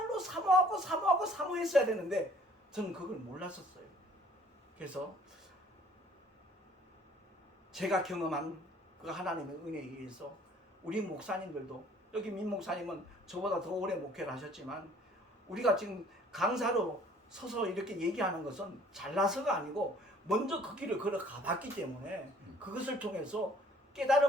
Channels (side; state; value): both; normal; correlation 0.56